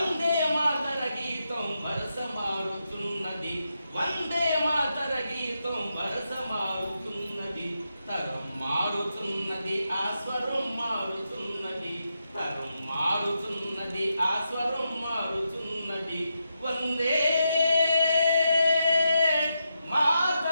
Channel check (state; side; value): inverted; both; correlation -0.85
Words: మాతర గీతం వరస మారుతున్నది వందే మాతర గీతం వరస మారుతున్నది తరం మారుతున్నది ఆ స్వరం మారుతున్నది తరం మారుతున్నది ఆ స్వరం మారుతున్నది వందే